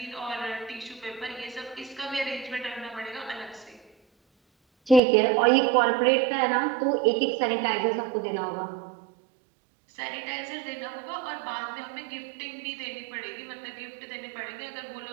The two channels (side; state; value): left; drops out; at 5.0 s